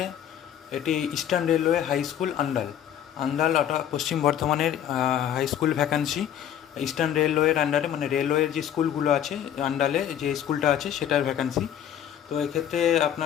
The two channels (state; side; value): quieter; right; 10.1 dB